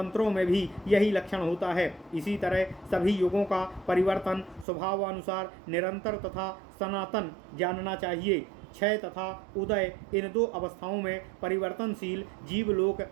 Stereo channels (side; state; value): left; drops out; at 4.7 s